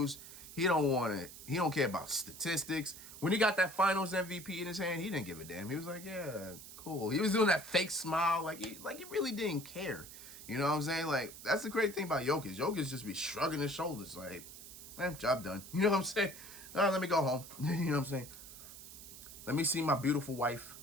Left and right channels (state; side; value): noise; right; hiss, 14 dB below the sound